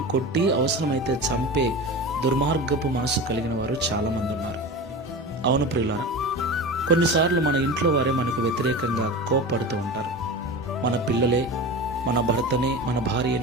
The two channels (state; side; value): normal; both; correlation 0.29